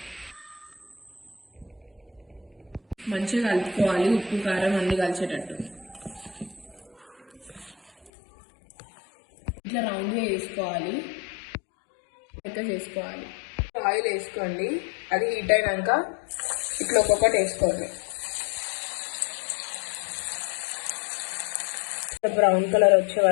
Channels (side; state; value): right; drops out; at 8.1 s